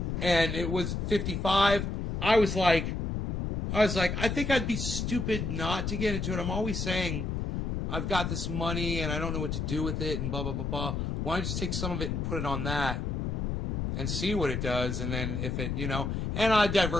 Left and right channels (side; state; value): left; noise; rumble, 1 dB below the sound